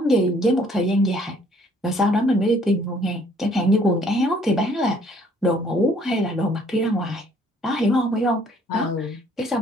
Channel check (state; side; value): normal; both; correlation 0.61